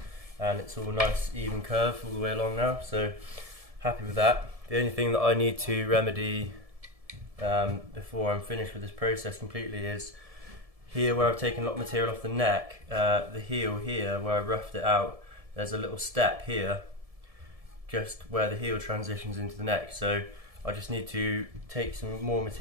and it's all nice even curve all the way along now, so happy with that. The only thing that I need to remedy before I'm finished with this process completely is here where I've taken a lot of material off the neck, the heel here where I roughed it out, there's a little step here just where the heel transitions into the neck, so I just need to take some more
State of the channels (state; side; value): late; left; 1.7 ms